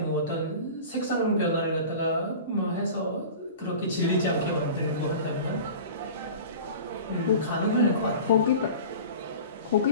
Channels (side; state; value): both; inverted; correlation -0.37